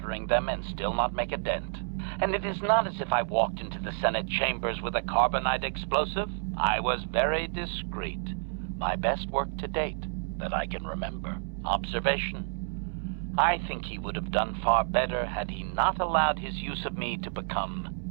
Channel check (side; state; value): left; silent; digital silence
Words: them and still not make a dent. And it is not as if I walked into the Senate chambers with a carbonite explosive. I was very discreet. My best work to date, that I can remember. Observation. I think he would have done far better had he not allowed his use of me to